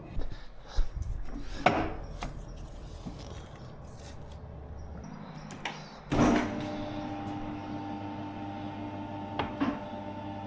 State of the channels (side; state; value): both; identical; correlation 1.00